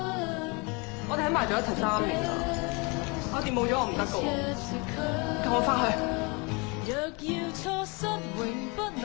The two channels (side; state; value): right; quieter; 29.8 dB